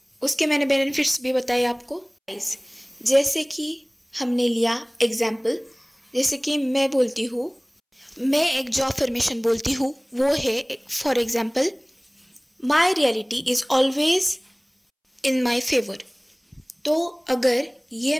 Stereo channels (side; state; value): both; identical; correlation 1.00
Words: उसके मैंने बेनिफिट्स भी बताए आपको। गाइस, जैसे कि हमने लिया एग्जाम्पल, जैसे कि मैं बोलती हूँ, मैं एक जो अफर्मेशन बोलती हूँ वो है for example, my reality is always in my favour. तो अगर ये